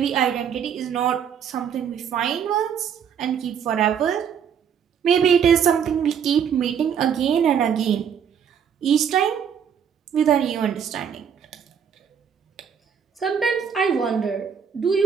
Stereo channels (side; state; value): left; quieter; 7.7 dB